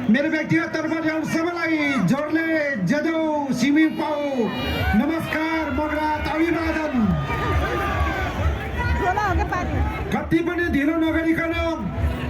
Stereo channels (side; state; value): both; identical; correlation 1.00